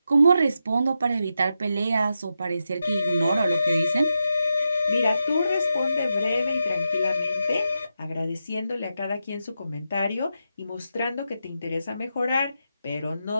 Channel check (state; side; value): inverted; both; correlation -0.87